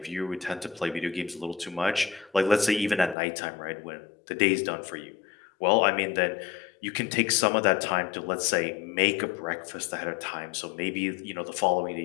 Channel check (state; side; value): drops out; right; at 3.2 s